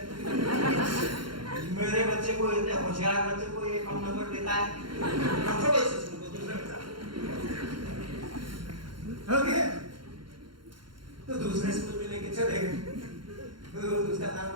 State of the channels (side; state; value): left; late; 0.73 ms